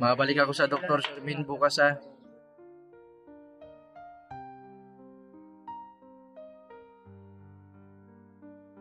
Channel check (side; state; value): both; identical; correlation 1.00